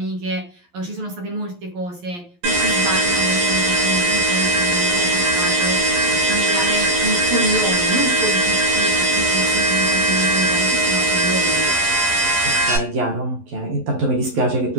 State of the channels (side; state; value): left; late; 11 ms